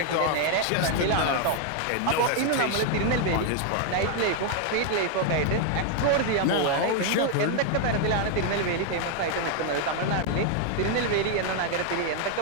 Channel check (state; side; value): different; both; correlation 0.00